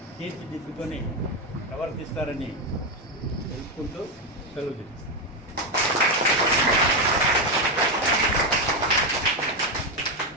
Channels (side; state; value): both; normal; correlation 0.08